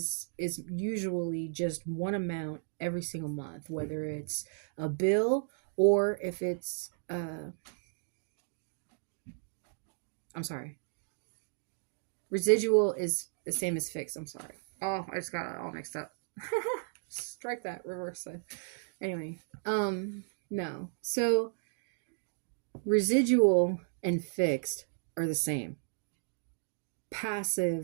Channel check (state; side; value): silent; left; digital silence